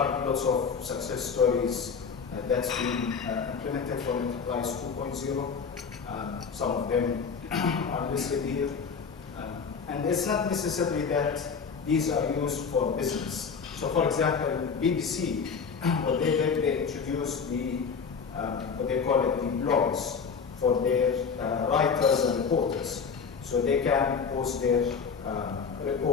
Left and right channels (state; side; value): quieter; right; 5.9 dB